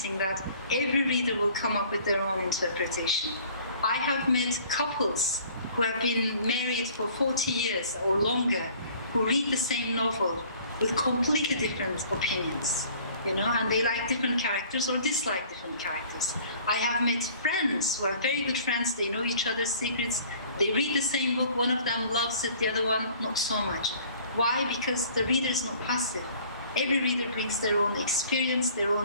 that every reader will come up with their own interpretation. I have met couples who have been married for 40 years or longer, who read the same novel with completely different opinions, and they like different characters or dislike different characters. I have met friends who are very good friends, they know each other's secrets, they read the same book, one of them loves it, the other one not so much. Why? Because the reader is not passive. Every reader brings their own experience, their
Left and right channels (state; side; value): inverted; both; correlation -0.52